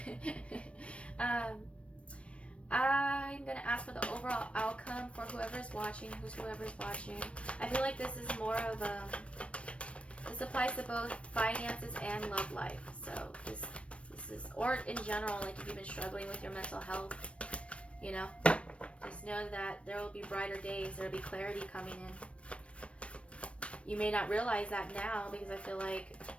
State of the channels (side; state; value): right; late; 0.061 ms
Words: I'm gonna ask for the overall outcome for whoever's watching, whoever's watching. I feel like this is more of this applies to both finances and love life. So this is, or in general, like if you've been struggling with your mental health, you know, just know that there will be brighter days. There will be clarity coming in. You may not realize that now because I feel like